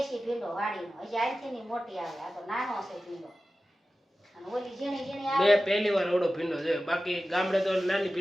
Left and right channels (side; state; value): both; normal; correlation 0.94